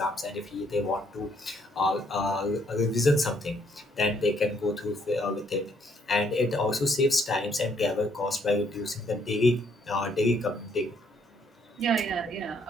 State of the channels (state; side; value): normal; both; correlation 0.68